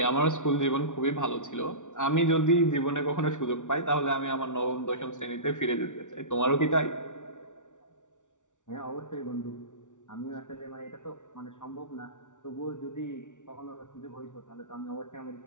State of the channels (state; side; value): late; right; 0.86 ms